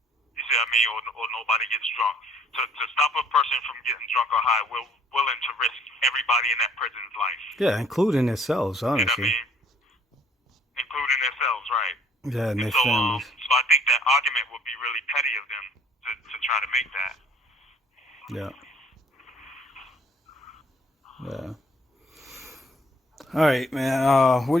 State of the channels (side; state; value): both; normal; correlation 0.59